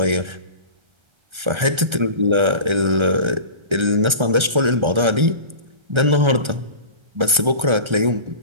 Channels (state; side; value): late; left; 1.3 ms